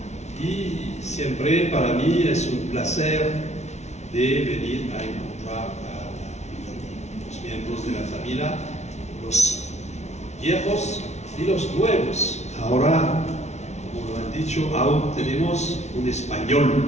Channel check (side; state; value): right; late; 0.32 ms